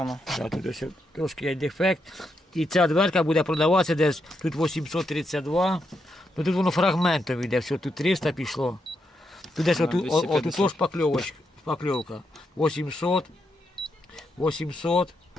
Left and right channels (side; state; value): both; normal; correlation 0.82